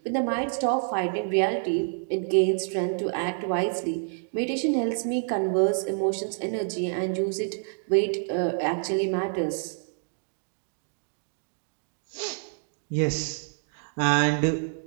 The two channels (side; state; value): left; silent; digital silence